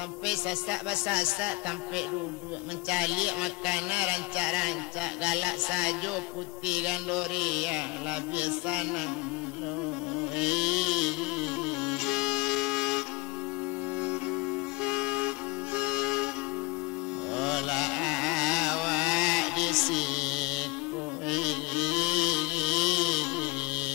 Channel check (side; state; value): right; quieter; 25.1 dB